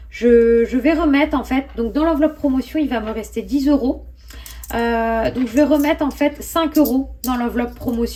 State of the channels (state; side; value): identical; both; correlation 1.00